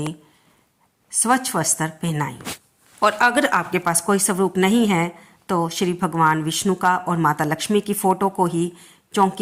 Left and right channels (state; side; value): identical; both; correlation 1.00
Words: स्वच्छ वस्त्र पहनाएं। और अगर आपके पास कोई स्वरूप नहीं है तो श्री भगवान विष्णु का और माता लक्ष्मी की फ़ोटो को ही